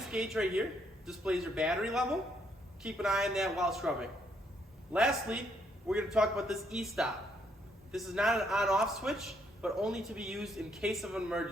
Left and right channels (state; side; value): normal; both; correlation 0.72